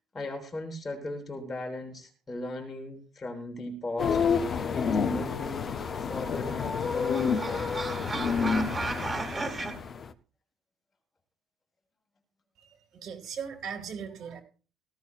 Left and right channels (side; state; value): right; quieter; 3.7 dB